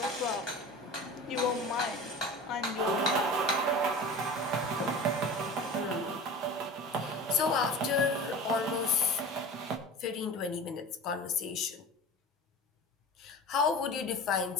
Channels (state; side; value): normal; both; correlation 0.35